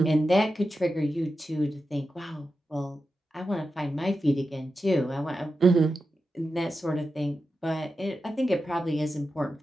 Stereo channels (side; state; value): both; normal; correlation 0.90